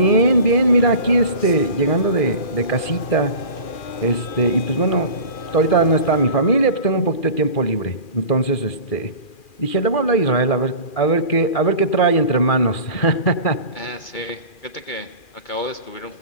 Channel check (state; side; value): late; right; 2.4 ms